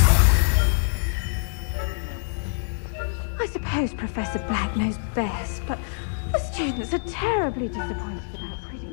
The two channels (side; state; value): right; silent; digital silence